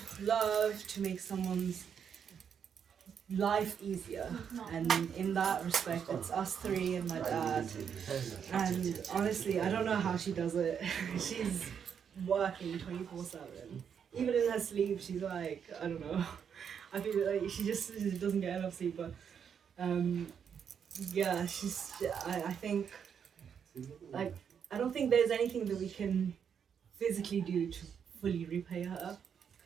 love, to make someone's life easier. And in that respect, it's us three and my dad. And honestly, I don't know how she does it. She's working 24/7. Even in her sleep, she's like, I don't know. I feel like she just doesn't get enough sleep. But yeah, I think, like, I don't think there's anything that we can physically do to fully repay her.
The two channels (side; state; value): left; quieter; 7.6 dB